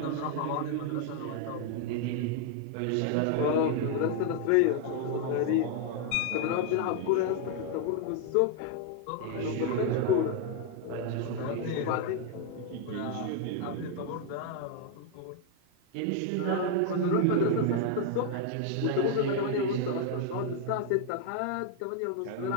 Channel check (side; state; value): both; different; correlation 0.00